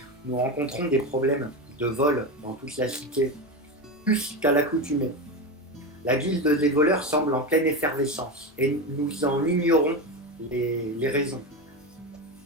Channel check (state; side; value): normal; both; correlation 0.18